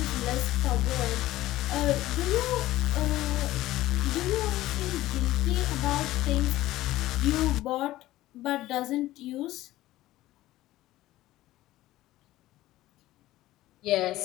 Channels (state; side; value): quieter; right; 16.0 dB